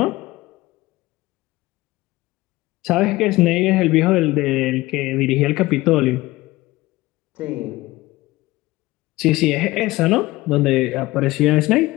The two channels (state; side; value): quieter; right; 19.2 dB